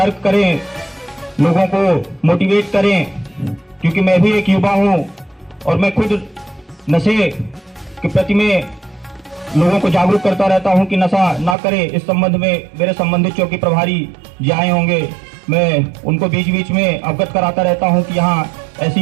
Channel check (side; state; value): left; drops out; at 11.6 s